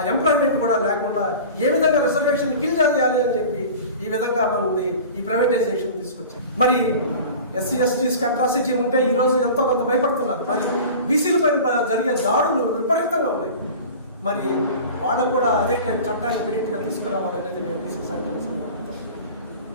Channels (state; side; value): inverted; both; correlation -0.38